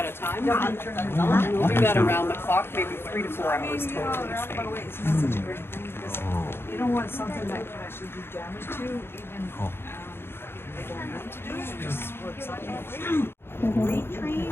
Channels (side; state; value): right; late; 0.11 ms